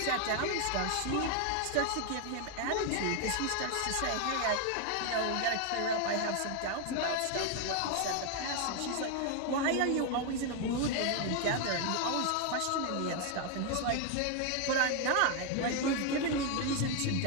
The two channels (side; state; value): both; different; correlation 0.01